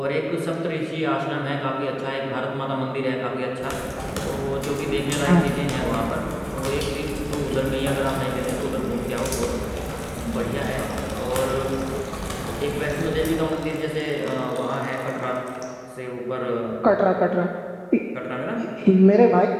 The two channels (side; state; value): both; identical; correlation 1.00